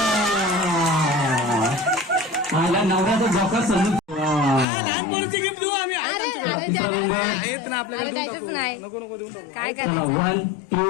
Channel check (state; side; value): drops out; right; at 4.7 s